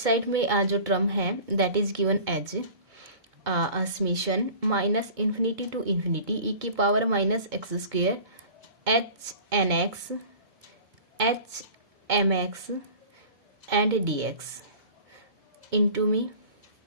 में जो टर्म है that is given as summation minus infinity to infinity e की power minus x square h nx h mx and dx into में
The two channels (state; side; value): late; left; 2.2 ms